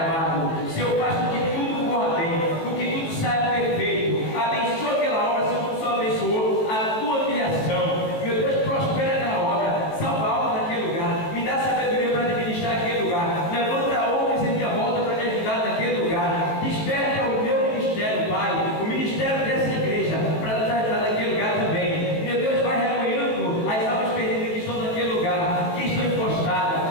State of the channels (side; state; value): right; late; 18 ms